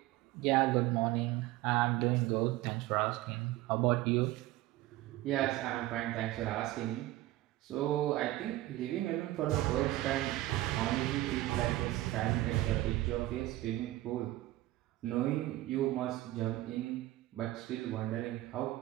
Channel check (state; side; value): quieter; left; 16.7 dB